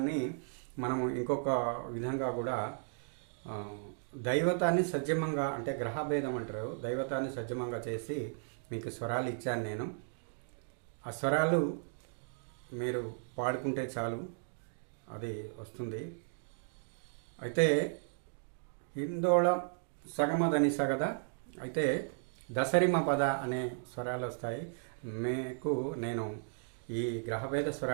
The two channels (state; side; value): silent; left; digital silence